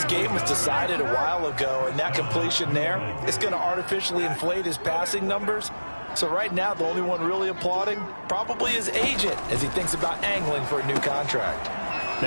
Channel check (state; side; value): inverted; both; correlation -1.00